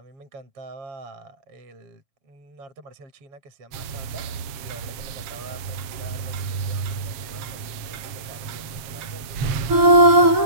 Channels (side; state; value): left; late; 7.3 ms